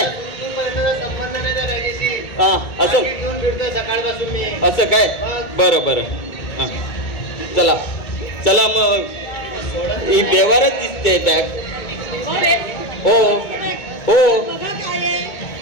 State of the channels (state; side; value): late; right; 2.2 ms